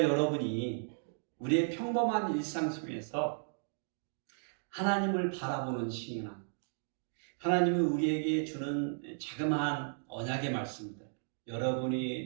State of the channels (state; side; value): silent; left; digital silence